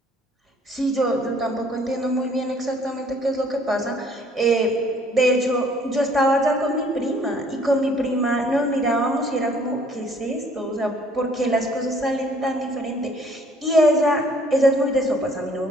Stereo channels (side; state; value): both; normal; correlation 0.59